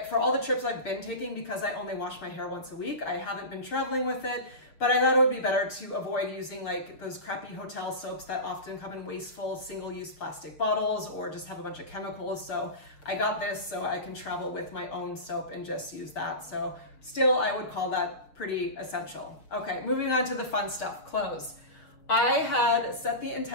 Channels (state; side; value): late; right; 6.4 ms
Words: for all the trips I've been taking, because I only wash my hair once a week, I haven't been traveling with it. But I thought it would be better to avoid using like those crappy hotel soaps that often come in wasteful single-use plastic bottles or just have a bunch of chemicals. So I got this so I can travel with my own soap and just use that. So still, I would call that pretty essential. Okay, moving on to the fun stuff, clothes. I had set the